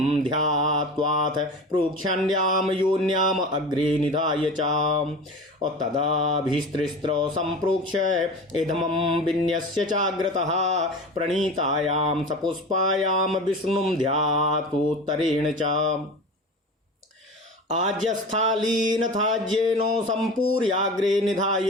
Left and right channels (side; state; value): both; normal; correlation 0.33